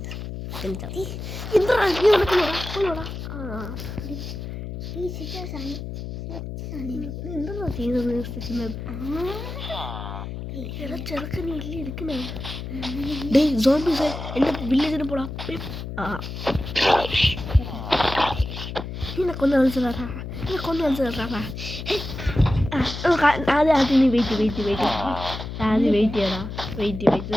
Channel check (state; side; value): noise; left; hum, 7 dB below the sound